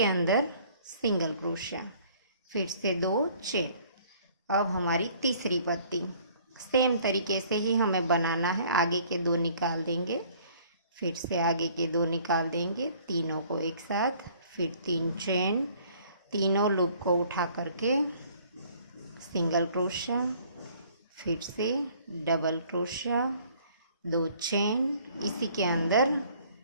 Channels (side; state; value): both; inverted; correlation -0.57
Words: अंदर सिंगल क्रोशा, फिर से 2 चेन। अब हमारी तीसरी पत्ती सेम तरीके से ही हमें बनाना है। आगे के 2 निकाल देंगे, फिर से आगे के 2 निकाल देंगे, तीनों को एक साथ, फिर 3 चेन, तीनों लूप को उठा करके सिंगल क्रोशा, फिर से डबल क्रोशा, 2 चेन, इसी के अंदर